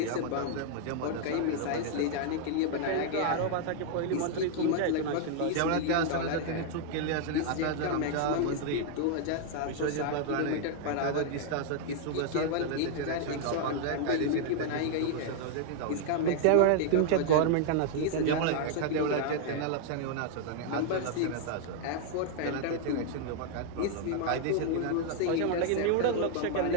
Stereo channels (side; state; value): both; different; correlation 0.00